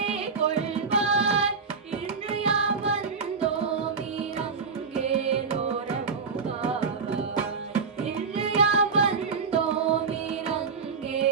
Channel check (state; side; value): quieter; left; 5.2 dB